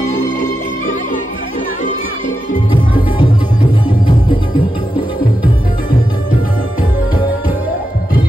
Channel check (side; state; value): both; normal; correlation 0.88